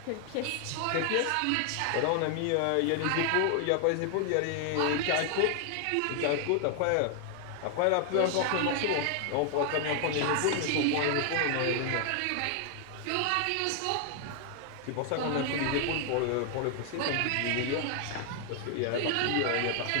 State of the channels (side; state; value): both; different; correlation 0.00